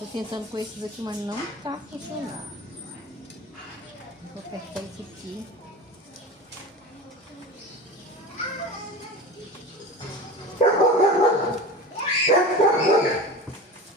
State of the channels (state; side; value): normal; both; correlation 0.32